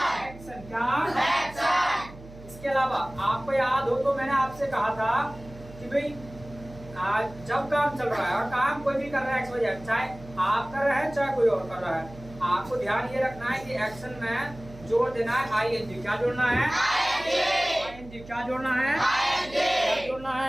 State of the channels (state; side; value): noise; right; hum, 18 dB below the sound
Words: एक्शन क्या? इसके अलावा आपको याद हो तो मैंने आपसे कहा था कि भाई जब काम चल रहा है और काम कोई भी कर रहा है एक्स चाहे आप कर रहे हैं चाहे कोई और कर रहा है, आपको ध्यान ये रखना है कि एक्शन में जोड़ देना है आईएनजी। क्या जोड़ना है? आईएनजी। क्या जोड़ना है? क्या जोड़ना